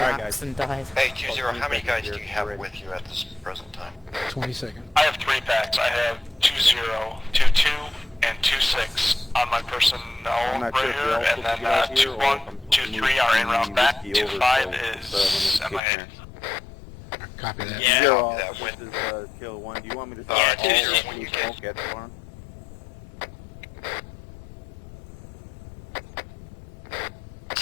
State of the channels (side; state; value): right; drops out; at 15.8 s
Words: and died. Hey, 2-0, how many guys do you have with you at this present time? 20 seconds. I have 3 packs. I have 20, 22, and 26 on my personnel I'm not right sure if here, you're and also then together here or 21, if I'm 23 moving are en route back. Whiskey over, 25 so, is when MIA. it's Copy that. Yeah. Zero Copy off. that. This is Kilo 1. Do you want me to Yeah, start all 2-0 of when you the get- smoke at the farm?